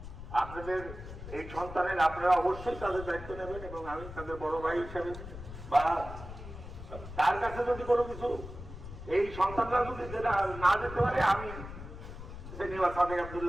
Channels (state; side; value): noise; left; rumble, 12 dB below the sound